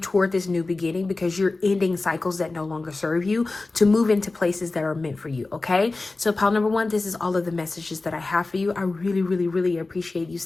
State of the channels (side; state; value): right; quieter; 3.4 dB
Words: this new beginning, because you're ending cycles that no longer serve you, to move into places that are meant for you. Okay, so pile number one, this is all of the messages that I have for you. I really appreciate you